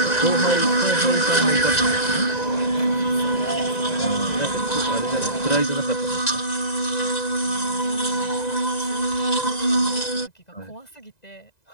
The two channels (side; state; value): right; late; 1.9 ms